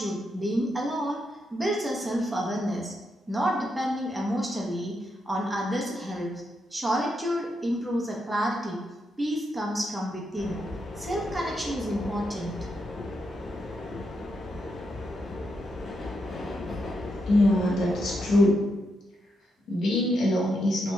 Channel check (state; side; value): normal; both; correlation 0.82